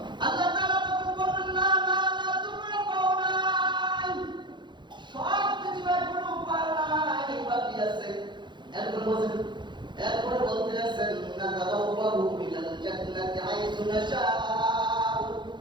আল্লাহ তাআলা তখন বললেন না না না, তোমরা পাও নাই, সব কিছু এখনো পাও নাই, বাকি আছে। এরপরে বলতে আছেন না তাবাওয়াহু মিনাল জান্নাতি হাইসু নাশাউ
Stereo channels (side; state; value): left; late; 0.22 ms